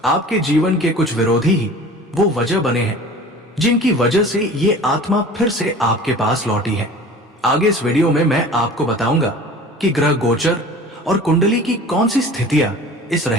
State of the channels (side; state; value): both; normal; correlation 0.42